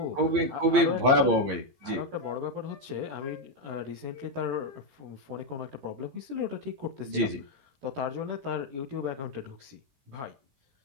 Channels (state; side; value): late; left; 15 ms